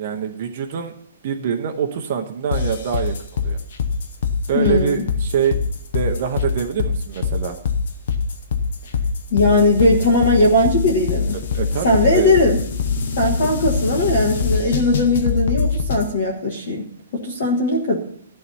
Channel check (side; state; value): both; inverted; correlation -0.48